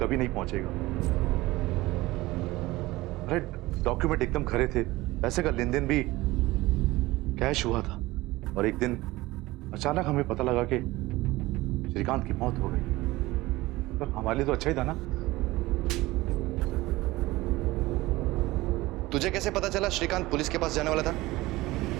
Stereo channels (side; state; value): left; quieter; 19.2 dB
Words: कभी नहीं पहुंचेगा। अरे डॉक्यूमेंट एकदम खरे थे, पैसे का लेन देन भी कैश हुआ था और एक दिन अचानक हमें पता लगा कि श्रीकांत की मौत हो गई। तो हमारे लिए तो अच्छा ही था ना। तुझे कैसे पता चला श्रीकांत पुलिस के पास जाने वाला था?